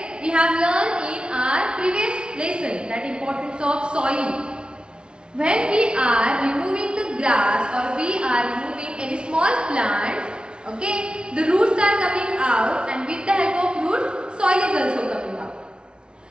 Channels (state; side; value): late; left; 0.055 ms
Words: We have learned in our previous lesson that importance of soil. When we are removing the grass or we are removing any small plants, okay, the roots are coming out, and with the help of roots, soil is also coming out.